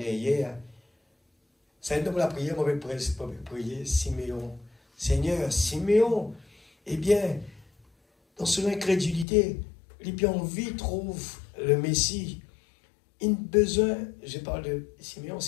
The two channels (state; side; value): drops out; right; at 9.2 s